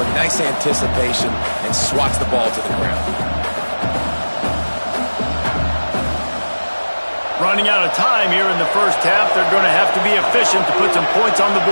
nice anticipation, and swats the ball to the ground. Running out of time here in the first half, they're going to have to be efficient to put some points on the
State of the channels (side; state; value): both; inverted; correlation -1.00